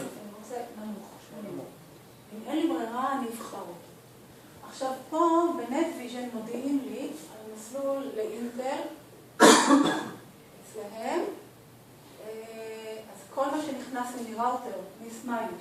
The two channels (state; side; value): identical; both; correlation 1.00